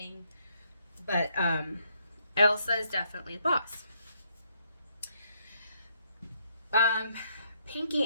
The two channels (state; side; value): inverted; both; correlation -0.73